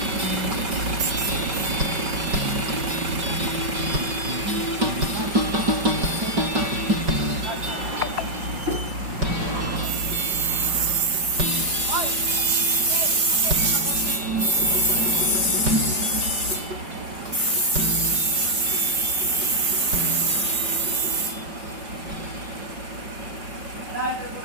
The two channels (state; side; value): late; left; 5.3 ms